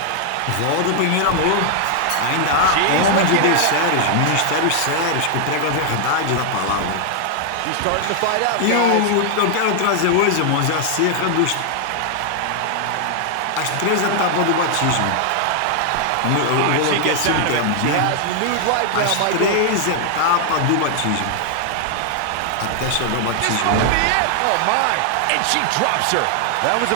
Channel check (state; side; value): different; both; correlation 0.00